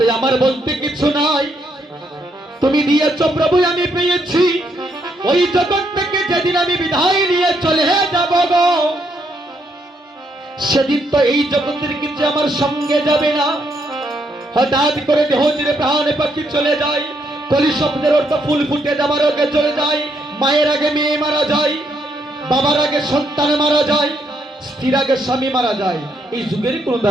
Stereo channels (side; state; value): both; normal; correlation 0.75